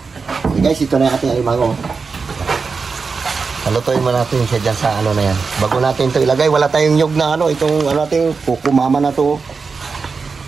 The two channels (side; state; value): left; quieter; 4.8 dB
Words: Okay guys, ito na yung ating alimango. Halutuin mo natin siya dyan sa ano na yan. Bago natin ito ilagay, wala tayong nyug na ano. Itong ano natin, kukumama na ito.